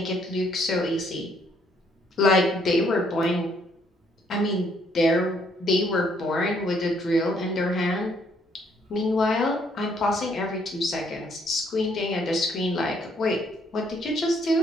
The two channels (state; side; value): normal; both; correlation 0.68